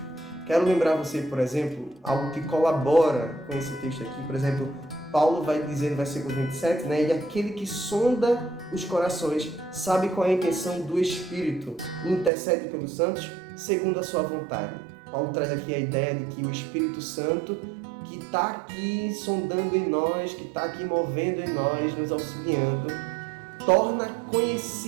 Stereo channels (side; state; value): left; drops out; at 12.3 s